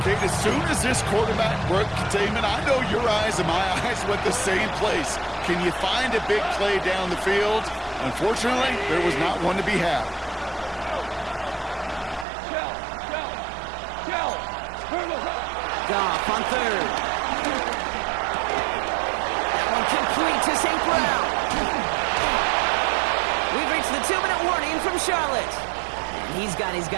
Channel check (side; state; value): left; drops out; at 12.2 s